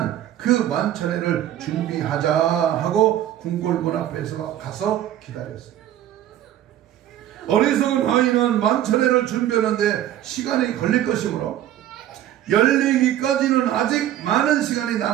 그 만찬회를 준비하자 하고 궁궐문 앞에서 가서 기다렸습니다. 어리석은 하인은 만찬회를 준비하는데 시간이 걸릴 것이므로 열리기까지는 아직 많은 시간이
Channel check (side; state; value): left; quieter; 12.1 dB